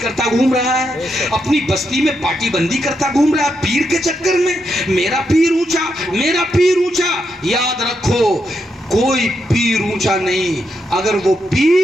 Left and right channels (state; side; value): normal; both; correlation 0.82